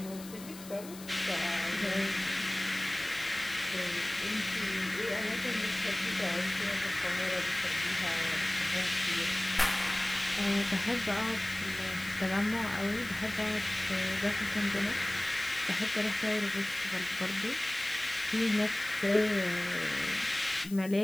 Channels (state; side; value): noise; left; hiss, 16 dB below the sound